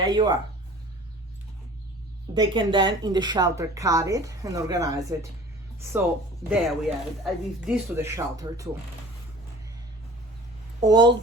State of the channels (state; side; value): normal; both; correlation 0.44